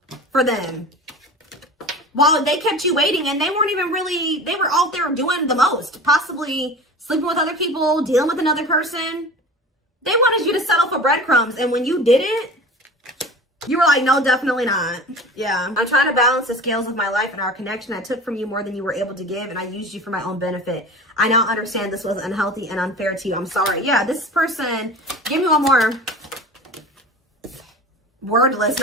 for them while they kept you waiting, and they weren't even really, they were out there doing the most, possibly sleeping with other people, dealing with another person. They wanted you to settle for breadcrumbs, and when you didn't, you were like, no, definitely not. Yeah. I'm trying to balance the scales of my life and our connection. I took from you more than you were able to give, and I used you for my own benefit. I now understand this was unhealthy and unfair to you. I'm sorry. Yeah, this person, give me one more. Wordless.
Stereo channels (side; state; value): both; normal; correlation 0.36